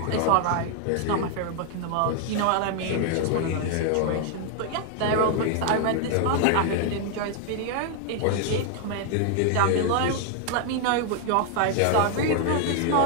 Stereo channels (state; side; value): different; both; correlation 0.00